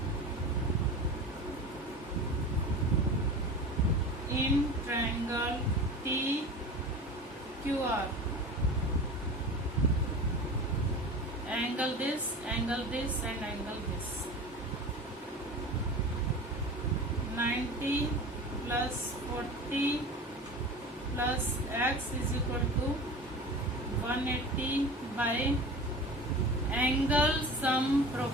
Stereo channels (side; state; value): both; normal; correlation 0.34